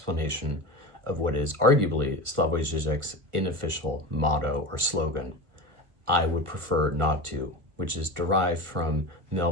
of what is arguably Slavoj Žižek's unofficial motto or slogan, I would prefer not to, which is derived from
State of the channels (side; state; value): left; late; 1.4 ms